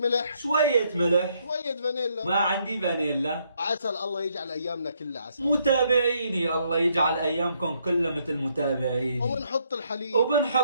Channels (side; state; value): both; inverted; correlation -0.72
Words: شوية ملح، شوية فانيلا، ما عندي فانيلا. عسل. الله يجعل ايامنا كلها عسل. متابعيني الله يجعل ايامكم كلها مثل متابعيني. وبنحط الحليب،